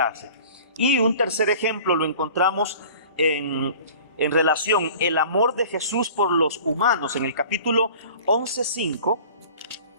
Y un tercer ejemplo lo encontramos en relación el amor de Jesús por los humanos. En el capítulo 11:5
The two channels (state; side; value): inverted; both; correlation -0.44